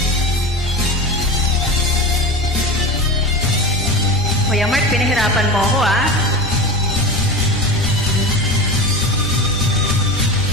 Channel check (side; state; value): both; normal; correlation 0.25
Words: Kuya Mark, pinahirapan mo ako ah.